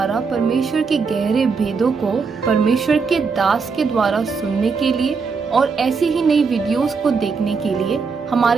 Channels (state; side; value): quieter; left; 5.0 dB